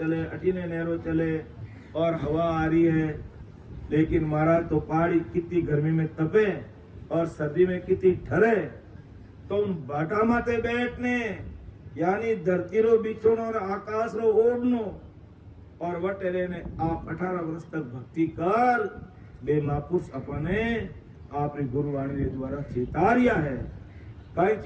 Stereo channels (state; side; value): identical; both; correlation 1.00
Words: अटीने नहरो चले और हवा आ रही है। लेकिन महाराज तो पहाड़ी कितनी गर्मी में तपे और सर्दी में कितनी ठरे, तो उन बाटा माते बैठने यानी धरती रो बिछोनो और आकाश रो ओढ़नो और वटेरे ने आप 18 वर्ष तक भक्ति कर बे महापुरुष अपने आपने गुरुवाणी के द्वारा चेतारिया है। कई